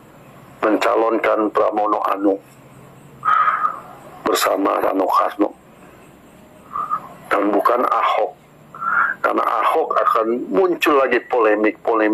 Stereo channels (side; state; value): both; identical; correlation 1.00